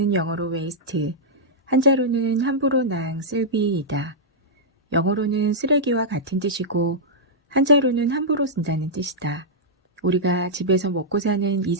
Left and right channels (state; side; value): normal; both; correlation -0.10